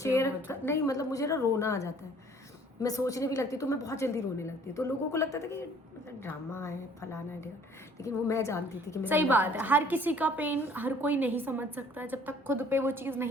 मतलब। नहीं, मतलब मुझे ना रोना आ जाता है, मैं सोचने भी लगती तो मैं बहुत जल्दी रोने लगती, तो लोगों को लगता था कि मतलब ड्रामा है, फलाना है, लेकिन वो मैं जानती थी कि मेरे सही अंदर बात क्या है, चल हर किसी का पेन हर कोई नहीं समझ सकता जब तक खुद पे वो चीज़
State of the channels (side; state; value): both; normal; correlation 0.55